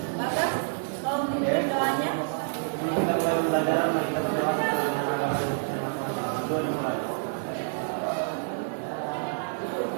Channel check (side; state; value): left; silent; digital silence